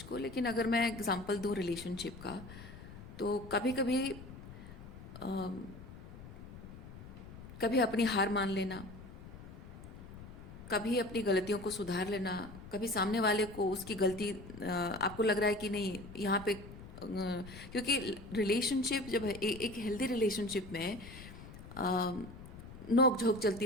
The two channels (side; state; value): left; noise; rumble, 14 dB below the sound